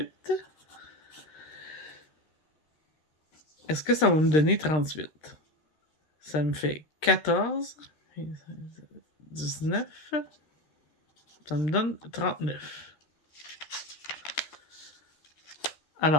est-ce que ça va me donner 38? Ça me fait 14, 19, ça me donne 39.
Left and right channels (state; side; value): late; right; 13 ms